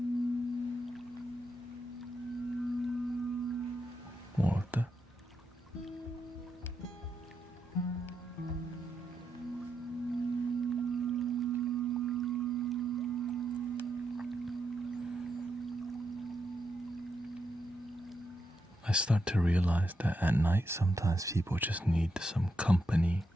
More of that. I start to realize that at night sometimes people just need some company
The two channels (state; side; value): normal; both; correlation 0.83